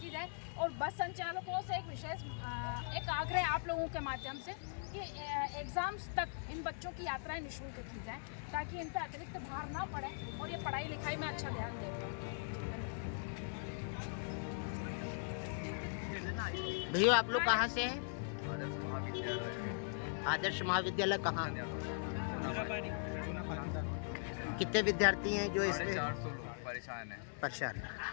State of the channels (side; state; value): right; silent; 51 dB below the other